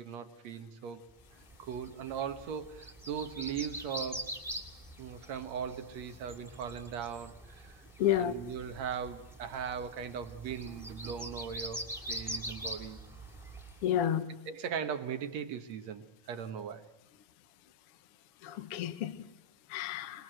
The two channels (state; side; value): normal; both; correlation -0.08